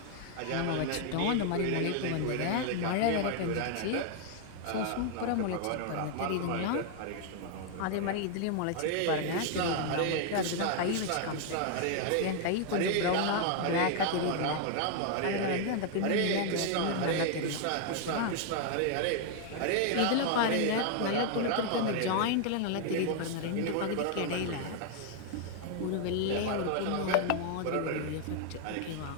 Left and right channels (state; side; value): different; both; correlation 0.00